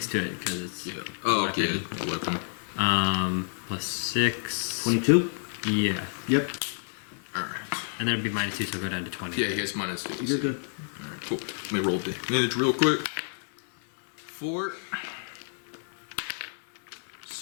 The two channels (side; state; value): right; silent; 59 dB below the other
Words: to it because it's Yeah. Oh, okay. weapon. Weapon. Plus 6. 22? Yeah. Yep. Alright. And then it'd be -2, so go down to 20. Yeah, he has -2. You're good. Alright, cool. Let me roll damage real quick. 4.